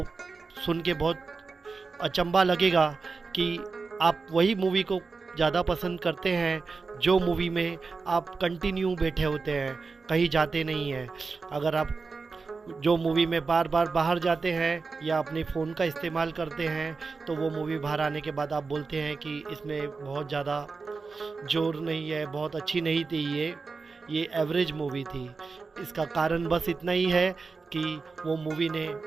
सुन के बहुत अचंभा लगेगा कि आप वही मूवी को ज़्यादा पसंद करते हैं जो मूवी में आप कंटिन्यू बैठे होते हैं, कहीं जाते नहीं हैं। अगर आप जो मूवी में बार बार बाहर जाते हैं या अपने फ़ोन का इस्तेमाल करते हैं, तो वो मूवी बाहर आने के बाद आप बोलते हैं कि इसमें बहुत ज़्यादा जोर नहीं है, बहुत अच्छी नहीं थी, ये एवरेज मूवी थी। इसका कारण बस इतना ही है कि वो मूवी ने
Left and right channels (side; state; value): left; quieter; 4.4 dB